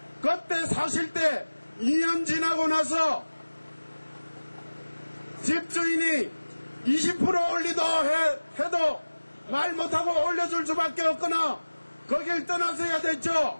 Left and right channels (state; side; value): inverted; both; correlation -1.00